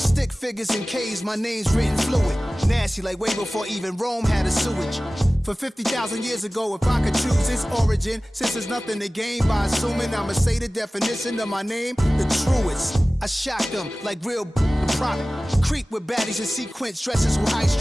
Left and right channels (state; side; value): normal; both; correlation 0.97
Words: stick figures and K's, my name's written fluid. Nasty like way before even Rome had a sewage. For 50,000 years ago, if I could choose its origin, since there's nothing to gain by assuming, I'ma say the definition of my name, the truest. I shocked them like real product. Creek with baddies in sequence, dresses with high